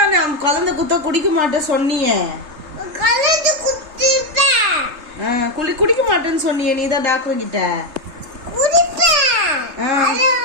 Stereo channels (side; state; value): left; late; 3.3 ms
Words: குழந்தை குத்த குடிக்க மாட்டேன் சொன்னியே. குடிக்க மாட்டேன்னு சொன்னியே நீதான் டாக்டர் கிட்ட.